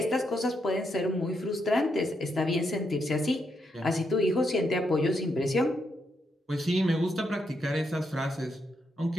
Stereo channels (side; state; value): both; normal; correlation 0.80